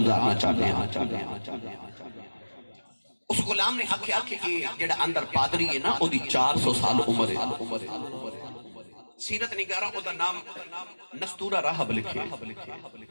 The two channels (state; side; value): inverted; both; correlation -1.00